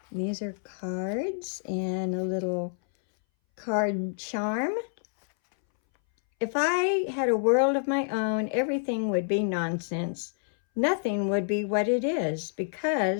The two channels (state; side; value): silent; right; 59 dB below the other